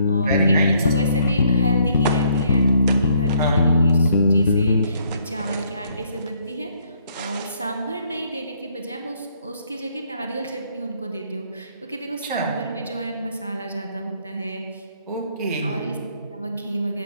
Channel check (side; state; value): both; inverted; correlation -0.66